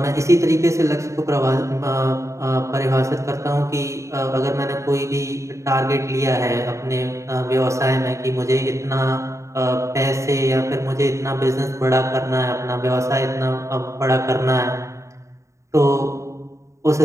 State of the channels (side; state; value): left; late; 0.14 ms